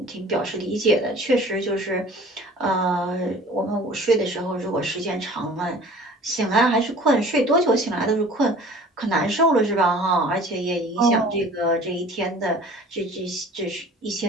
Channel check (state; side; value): normal; both; correlation 0.46